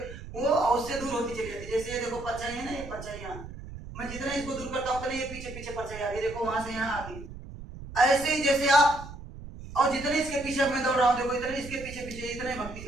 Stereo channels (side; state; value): right; noise; rumble, 13 dB below the sound